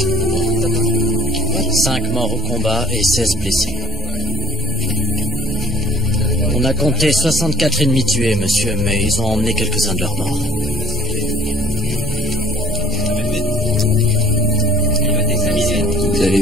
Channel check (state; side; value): normal; both; correlation 0.49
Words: 5 morts au combat et 16 blessés. On a compté 64 ennemis tués, monsieur, mais ils ont emmené quelques-uns de leurs morts. Vous